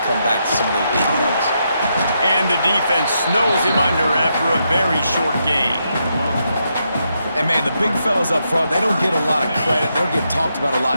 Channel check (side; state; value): both; inverted; correlation -0.81